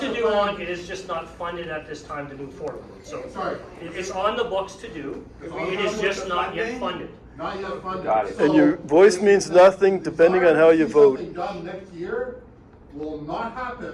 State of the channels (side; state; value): both; identical; correlation 1.00